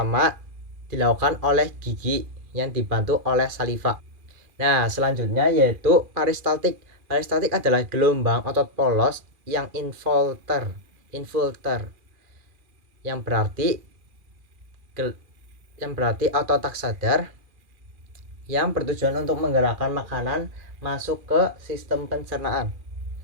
dilakukan oleh gigi yang dibantu oleh saliva. Nah, selanjutnya yaitu peristaltik. Peristaltik adalah gelombang otot polos yang infilter yang berarti otot tak sadar yang bertujuan untuk menggerakkan makanan masuk ke sistem pencernaan.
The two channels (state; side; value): late; left; 2.4 ms